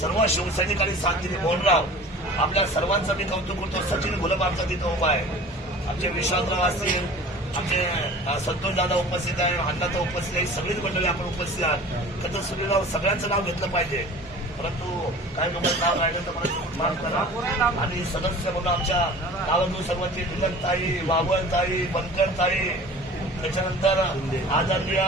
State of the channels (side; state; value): both; normal; correlation 0.42